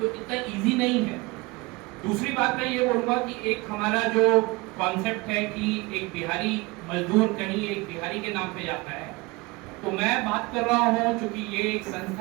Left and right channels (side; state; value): left; quieter; 24.3 dB